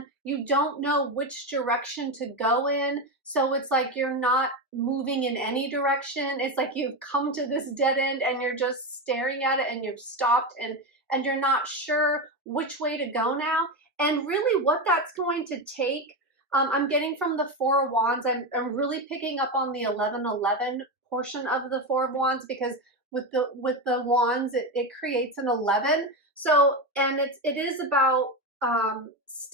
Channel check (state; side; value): normal; both; correlation 0.15